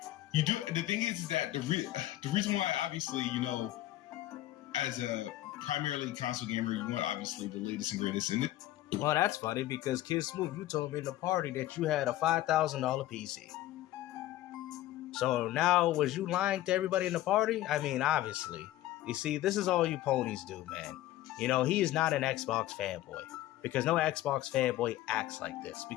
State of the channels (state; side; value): quieter; right; 14.9 dB